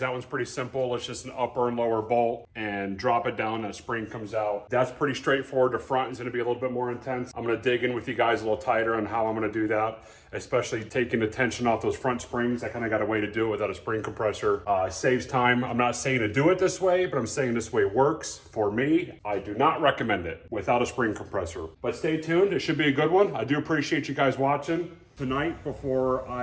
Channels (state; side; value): identical; both; correlation 1.00